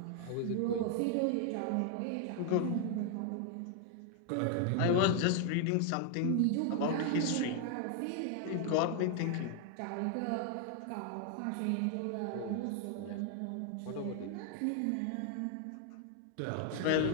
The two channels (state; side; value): different; both; correlation 0.00